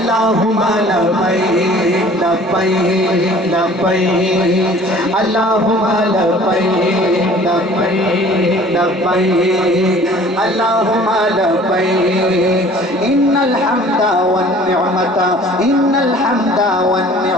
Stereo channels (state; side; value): normal; both; correlation 0.50